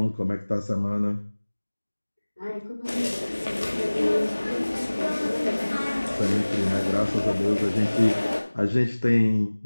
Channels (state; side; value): inverted; both; correlation -1.00